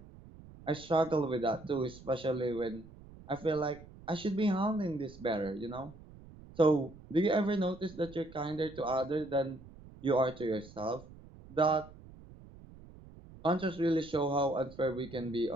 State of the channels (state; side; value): noise; right; rumble, 19 dB below the sound